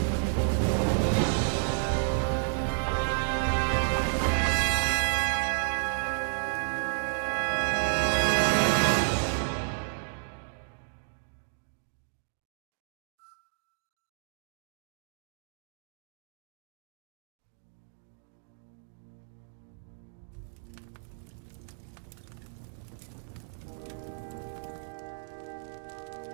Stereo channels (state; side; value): silent; left; digital silence